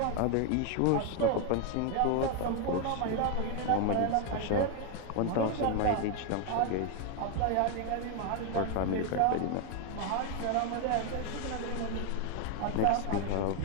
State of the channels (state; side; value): different; both; correlation 0.01